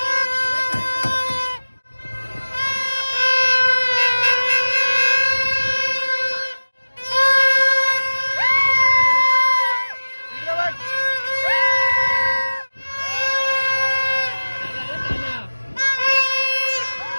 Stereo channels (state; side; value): inverted; both; correlation -1.00